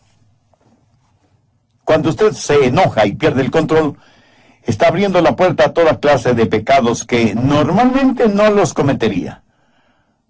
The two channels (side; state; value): both; identical; correlation 1.00